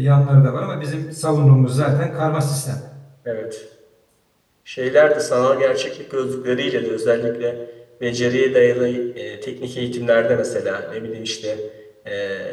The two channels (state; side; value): identical; both; correlation 1.00